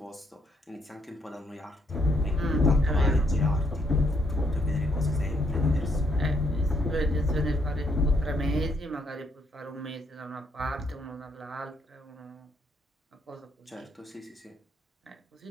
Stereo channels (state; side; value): normal; both; correlation 0.72